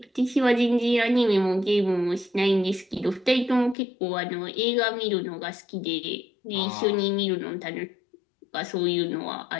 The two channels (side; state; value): right; drops out; at 3.8 s